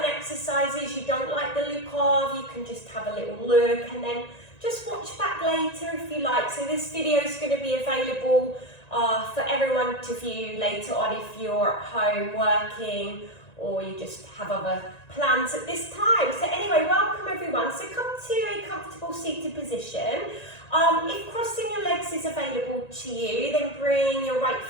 exercises you don't like the look of, you can just have a little look and then just watch back later if you like. So this video is going to be available for everyone to view later on if you're at home working or you just have other plans at this time. So anyway, welcome everyone. So come to a comfortable seated position. If crossing your legs is available to you, then bring your right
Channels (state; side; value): late; right; 1.9 ms